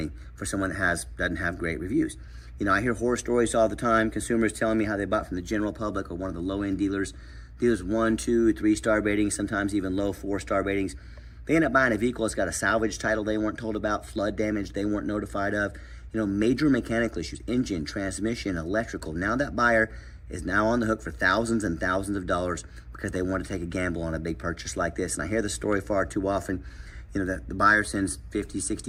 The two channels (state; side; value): identical; both; correlation 1.00